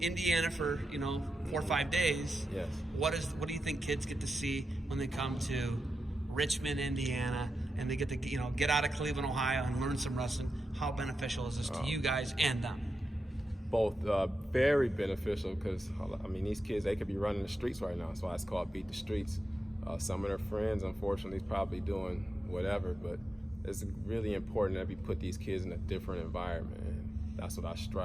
for 4 or 5 days. Yes. What do you think kids get to see when they come to Richmond, Indiana, and they get to get out of Cleveland, Ohio, and learn some wrestling? How beneficial is this to you guys and them? Both very beneficial because these kids, they could be running the streets right now. That's why it's called Beat the Streets. Some of their friends, unfortunately, is probably doing whatever, but it's really important that we put these kids in a different environment. And that's what I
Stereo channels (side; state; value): both; normal; correlation 0.89